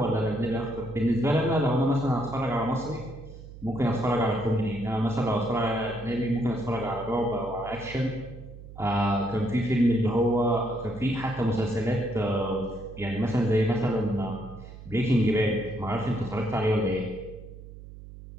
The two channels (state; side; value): noise; right; hum, 15 dB below the sound